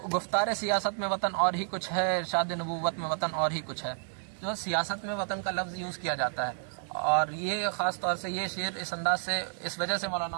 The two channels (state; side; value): silent; left; 57 dB below the other